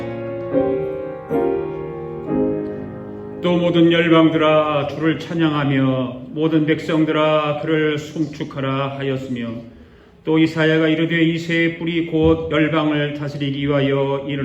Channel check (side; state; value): both; identical; correlation 1.00